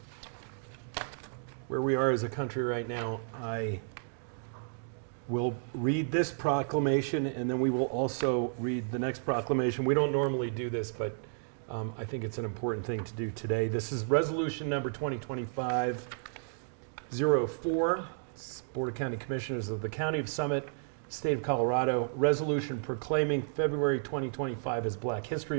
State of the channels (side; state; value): left; silent; digital silence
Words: where we are as a country right now, I will read this proclamation, and then we will also read the next proclamation. We don't normally do this, but I think it's an important thing to do today. This is resolution number 2025-04. It's Board of County Commissioners of the County of Summit, State of Colorado, resolution proclaiming February 2025 as Black History